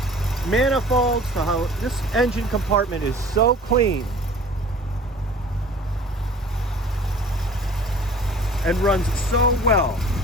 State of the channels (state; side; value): normal; both; correlation 0.47